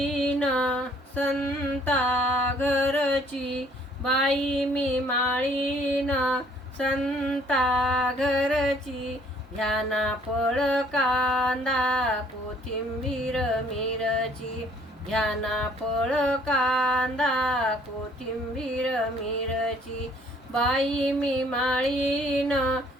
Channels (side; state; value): both; normal; correlation 0.61